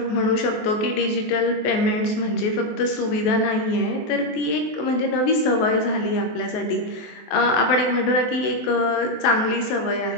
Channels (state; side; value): late; right; 23 ms